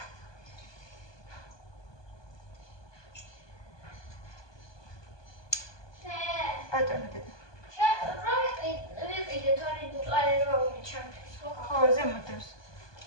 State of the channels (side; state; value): right; late; 1.2 ms